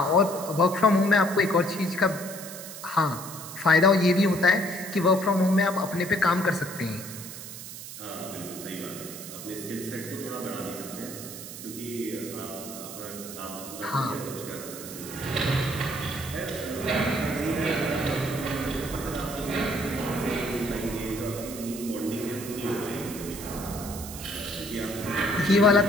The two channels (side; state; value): right; noise; hiss, 11 dB below the sound